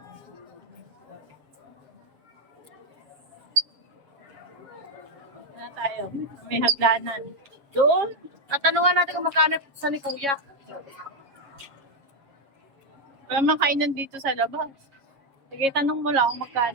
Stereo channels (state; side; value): late; left; 7.2 ms